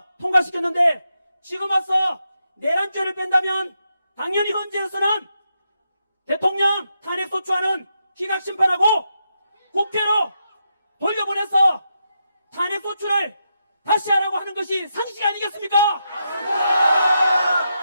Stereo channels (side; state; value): both; inverted; correlation -0.83